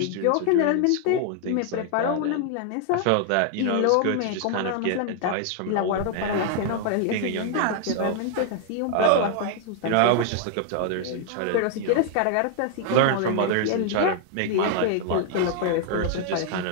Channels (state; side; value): different; both; correlation 0.00